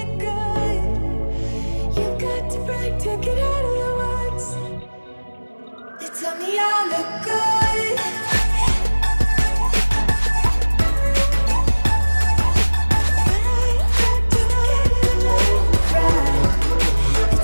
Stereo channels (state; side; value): inverted; both; correlation -1.00